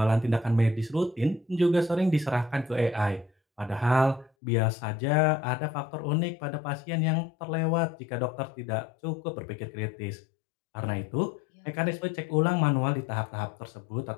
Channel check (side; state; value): right; drops out; at 4.3 s